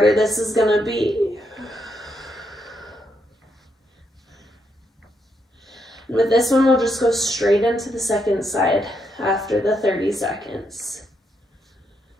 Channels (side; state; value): both; normal; correlation 0.79